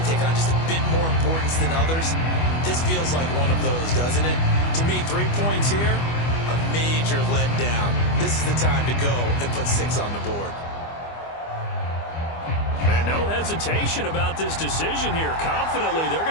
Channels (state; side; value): late; right; 25 ms